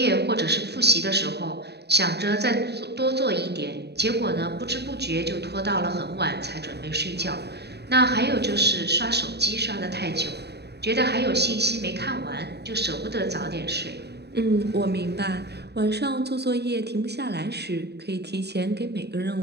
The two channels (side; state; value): left; late; 0.48 ms